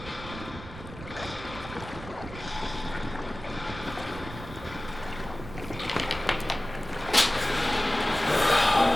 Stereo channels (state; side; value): noise; right; rumble, 13 dB below the sound